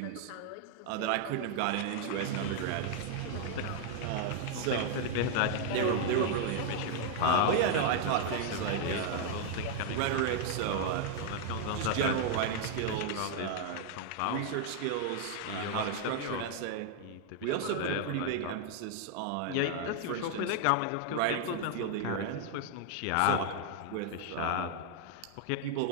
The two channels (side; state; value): both; different; correlation 0.00